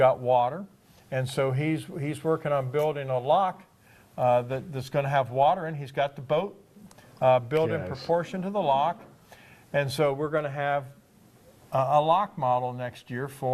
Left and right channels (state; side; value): identical; both; correlation 1.00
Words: water. And so he's working on building a lock that's going to have water in. He's got the boat built in proportion to the lock. And so we're going to have a lock model next year